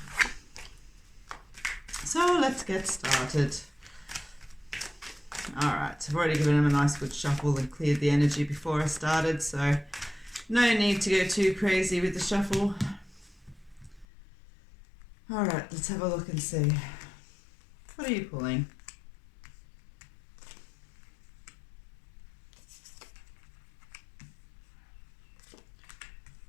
So let's get started. All right, I've already given him a nice good shuffle and cleared the energy before I started, so no need to go too crazy with the shuffle. All right, let's have a look and see. What are you pulling?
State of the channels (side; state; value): right; drops out; at 14.1 s